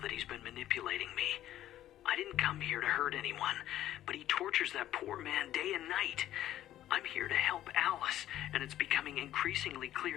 he's been manipulating me. I didn't come here to hurt anyone, but he tortures that poor man day and night. I'm here to help Alice, and it's becoming increasingly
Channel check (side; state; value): right; quieter; 12.8 dB